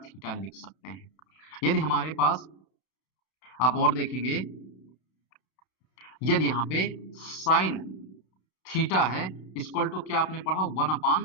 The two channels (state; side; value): late; right; 32 ms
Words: थीटा लिख सकते हैं। यदि हमारे पास आप और देखेंगे, यदि यहाँ पे साइन थीटा है इक्वल टू क्या आपने पढ़ा